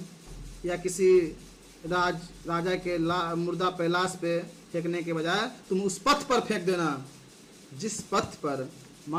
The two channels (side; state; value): both; identical; correlation 1.00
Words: या किसी राजा के मुर्दा पे, लाश पे फेंकने के बजाय तुम उस पथ पर फेंक देना जिस पथ पर